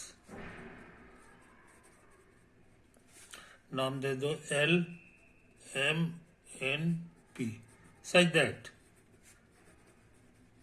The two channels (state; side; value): identical; both; correlation 1.00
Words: नाम दे दो L M N P, such that.